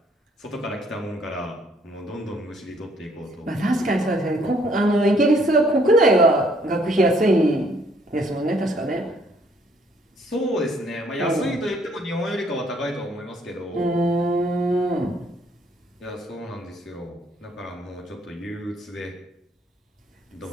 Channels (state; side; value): normal; both; correlation 0.65